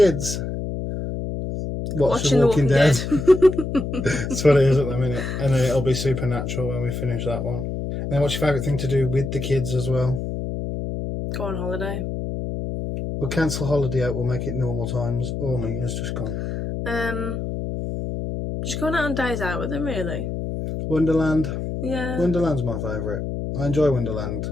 Watch Watching The Walking Dead. That's what it is at the minute. And then it'll be Supernatural when we finish that one. And then what's your favourite thing to do with the kids as well? Go on holiday. We'll cancel holiday out, we'll make it normal times. Oh, my, it's just gone. Just going out on days out with them, really. Wonderland. Yeah. Wonderland's my favourite. I enjoy Wonderland.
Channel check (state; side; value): noise; left; hum, 4 dB below the sound